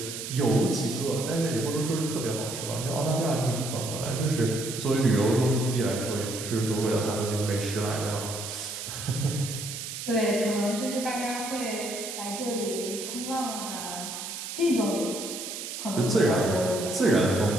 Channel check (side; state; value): right; noise; hiss, 7 dB below the sound